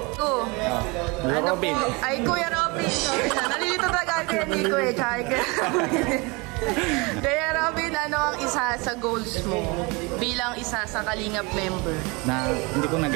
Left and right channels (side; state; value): left; quieter; 27.2 dB